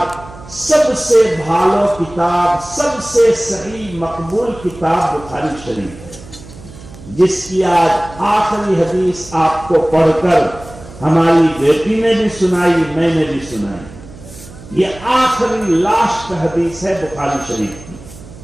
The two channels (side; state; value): right; noise; hum, 18 dB below the sound